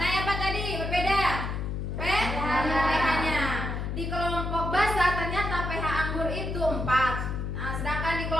apa tadi berbeda? pH-nya. Di kelompok basa ternyata pH anggur itu 4. Nah, sedangkan di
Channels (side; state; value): left; noise; hum, 3 dB below the sound